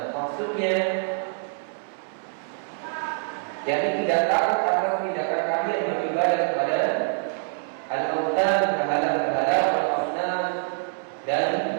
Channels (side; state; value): left; silent; 61 dB below the other